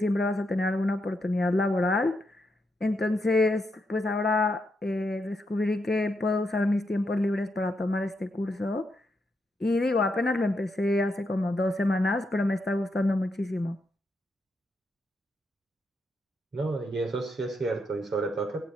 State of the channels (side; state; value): both; normal; correlation 0.81